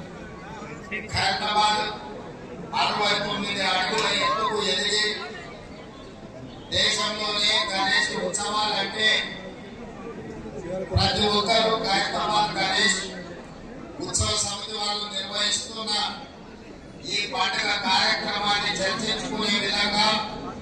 ఖైరతాబాద్ 69 అడుగుల ఎత్తుకు ఎదిగి దేశంలోనే గణేష్ ఉత్సవాలంటే ప్రతి ఒక్కరూ ఖైరతాబాద్ గణేష్ ఉత్సవ సమితి వాళ్ళు నిర్వహిస్తున్న ఈ పండుగ కార్యక్రమాన్ని చర్చించుకునే విధంగా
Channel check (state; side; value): identical; both; correlation 1.00